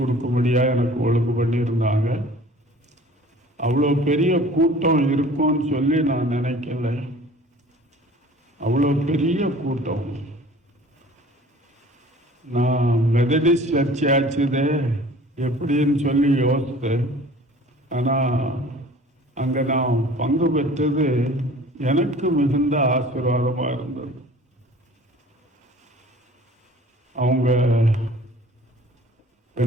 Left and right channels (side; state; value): both; normal; correlation 0.47